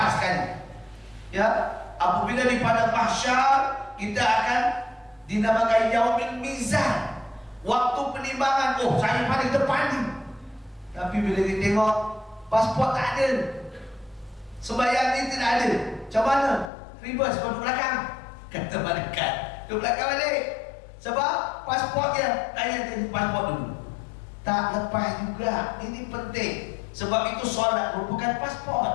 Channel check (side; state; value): right; drops out; at 16.7 s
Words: sekali. Ya, apabila di padang mahsyar kita akan dinamakan yaumil mizan, waktu penimbangan. Saya paling depan ni. Tapi bila kita tengok pasport tak ada, sembahyang ni tidak ada, macam mana? Reverse, kau duduk belakang. Kata malaikat, duduk belakang balik. Sebab pasport dia, tanya pasport dulu. Tak lepas juga. Ini penting. Sebab itu solat merupakan